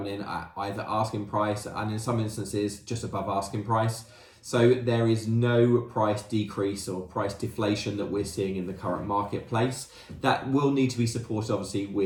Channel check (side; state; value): both; identical; correlation 1.00